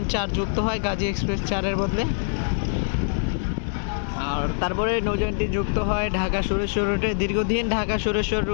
4 যুক্ত হয় গাজী এক্সপ্রেস 4-এর বদলে। আর তারপরে নৌযানটি যুক্ত হয় ঢাকা সুরেশ্বর রুটে। দীর্ঘদিন ঢাকা সুরেশ্বর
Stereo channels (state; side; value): silent; right; digital silence